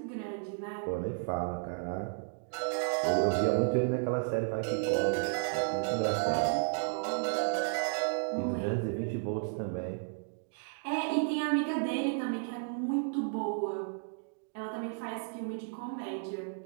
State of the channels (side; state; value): left; silent; digital silence